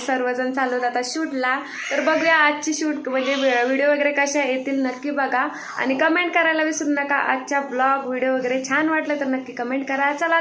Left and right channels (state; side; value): identical; both; correlation 1.00